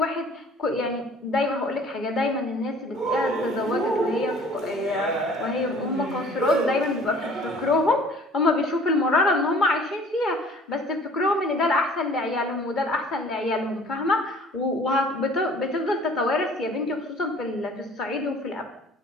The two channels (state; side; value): normal; both; correlation 0.51